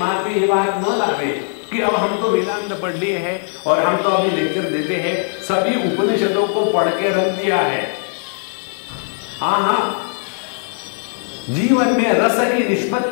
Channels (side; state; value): right; silent; 61 dB below the other